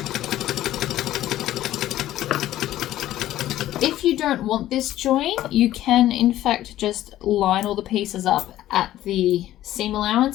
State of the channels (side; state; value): right; quieter; 13.7 dB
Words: If you don't want this join, you can in fact just line all the pieces up at the seam